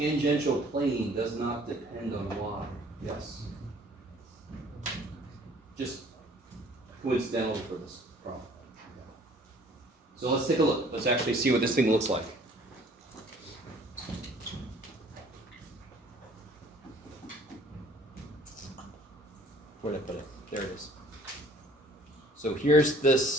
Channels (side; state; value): both; normal; correlation 0.55